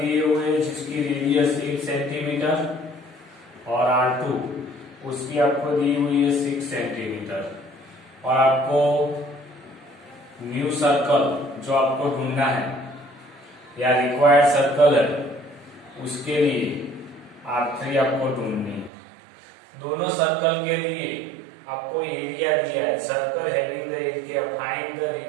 हुए हैं जिसकी रेडियस 1 सेंटीमीटर और R2 उसकी आपको दी हुई है 6 सेंटीमीटर। और आपको न्यू सर्कल जो आपको ढूंढना है या रिक्वायर्ड सर्कल है उसके लिए R3 आपको ढूंढनी है। दोनों सर्कल के लिए आपको एरिया दिया है। Circle having the area, find the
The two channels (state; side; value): drops out; left; at 18.9 s